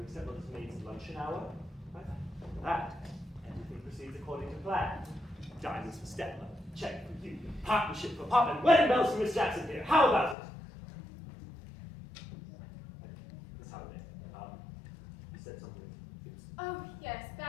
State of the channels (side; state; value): right; drops out; at 10.4 s